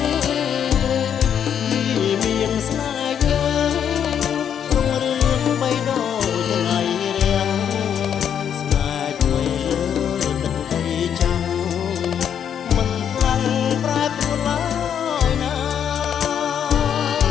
មានស្នេហ៍យើងក្នុងរឿងបីដូចថ្ងៃរៀងស្នេហ៍ថ្មីលើទឹកដីចាំងមិនខ្លាំងប្រែប្រួលឡើយណា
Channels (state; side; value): quieter; right; 8.6 dB